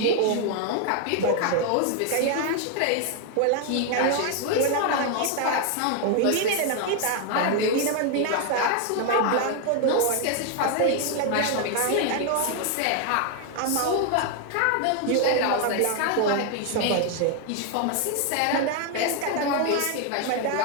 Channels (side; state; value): both; different; correlation 0.01